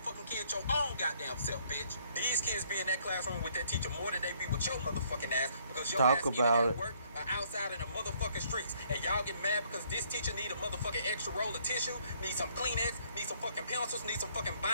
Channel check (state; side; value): inverted; both; correlation -0.65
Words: kid your own goddamn self, bitch. These kids be in that classroom with that teacher more than they be with your motherfucking ass, because your Talk ass either about at it. work or outside in the motherfucking streets. And y'all get mad because this teacher need a motherfucking extra roll of tissue, need some Kleenex, need some fucking pencils, need some fucking